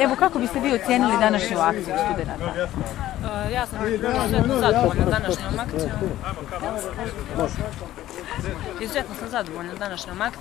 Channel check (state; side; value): quieter; right; 14.0 dB